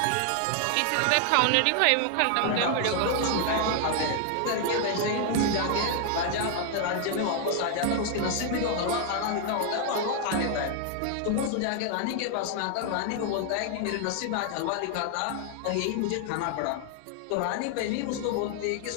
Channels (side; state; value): both; different; correlation 0.00